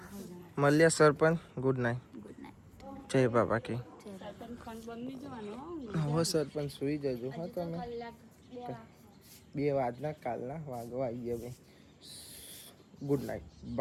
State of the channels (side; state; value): both; identical; correlation 1.00